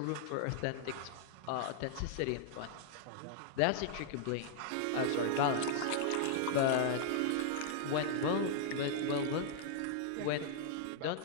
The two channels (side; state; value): both; different; correlation -0.01